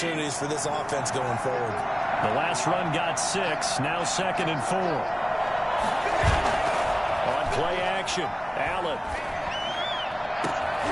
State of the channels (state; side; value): identical; both; correlation 1.00